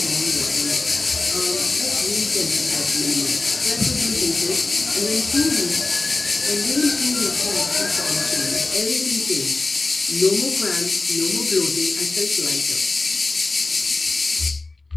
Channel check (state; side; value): quieter; right; 3.3 dB